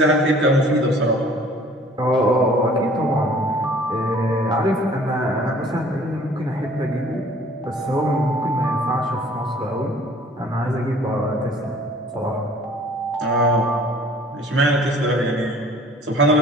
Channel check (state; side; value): normal; both; correlation 0.52